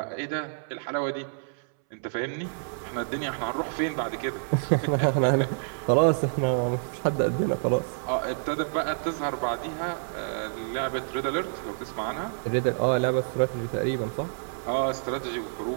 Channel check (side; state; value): left; silent; 59 dB below the other